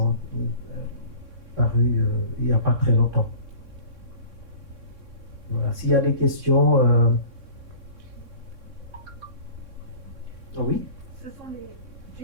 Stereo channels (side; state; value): left; late; 3.6 ms